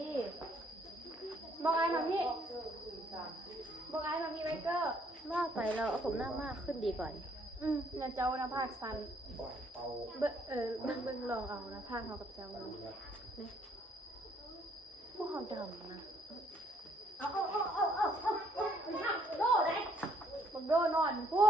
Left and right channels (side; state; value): both; normal; correlation 0.67